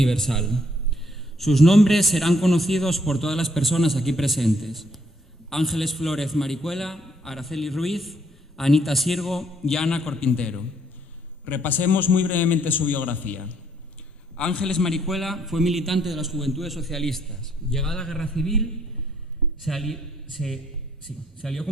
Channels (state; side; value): normal; both; correlation 0.68